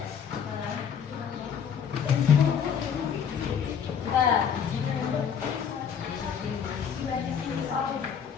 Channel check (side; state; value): right; quieter; 7.5 dB